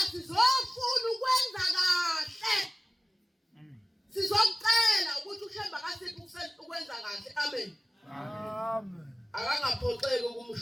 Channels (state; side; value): normal; both; correlation 0.97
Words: sizofuna ukwenza kahle sizokucela ukuthi ushemba kasiphi ukwenza kahle amen akangaphoxeki